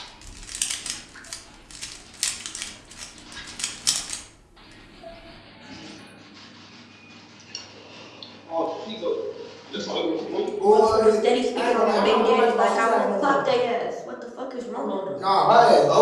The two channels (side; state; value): both; identical; correlation 1.00